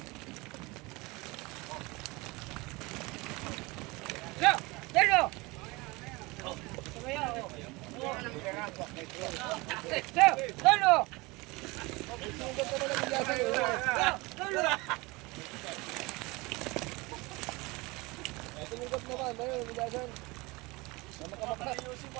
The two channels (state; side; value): quieter; left; 24.0 dB